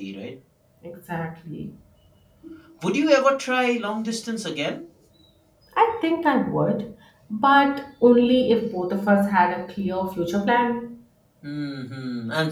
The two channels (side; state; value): both; identical; correlation 1.00